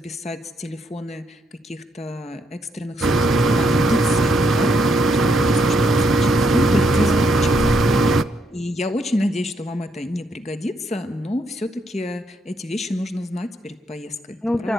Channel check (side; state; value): both; normal; correlation 0.75